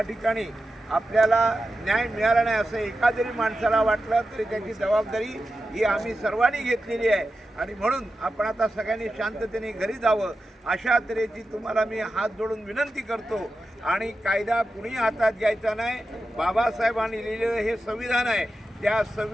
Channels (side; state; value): both; normal; correlation 0.91